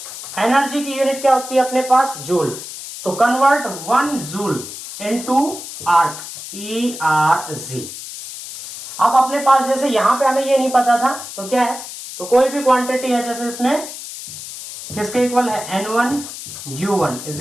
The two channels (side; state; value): left; noise; hiss, 11 dB below the sound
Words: एनर्जी की यूनिट क्या होती है अपने पास, जूल, तो convert 1 joule into arc, ERG। अब अपने पास जैसे यहां पे हमें ये नहीं पता था, तो क्या है, तो कोई भी क्वांटिटी है, जैसे इसमें किसके इक्वल है, N1 U1 is